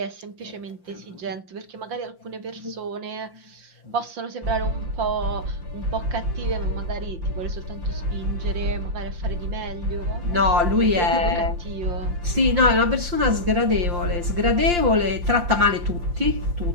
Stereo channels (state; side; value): late; left; 5.7 ms